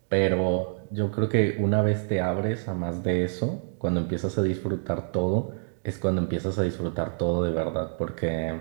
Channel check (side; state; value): left; silent; digital silence